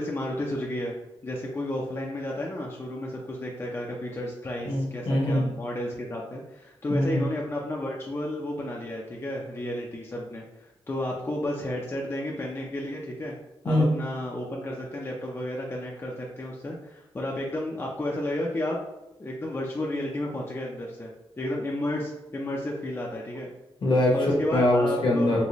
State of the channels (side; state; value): both; normal; correlation 0.81